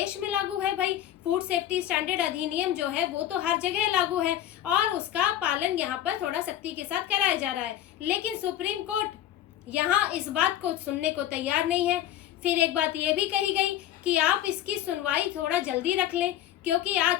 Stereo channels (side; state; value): right; quieter; 11.9 dB